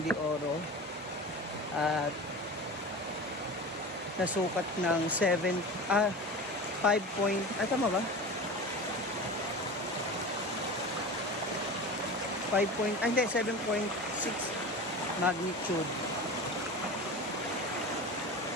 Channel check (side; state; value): both; normal; correlation 0.31